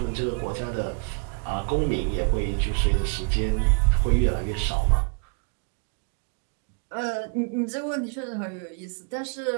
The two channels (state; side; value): quieter; left; 38.4 dB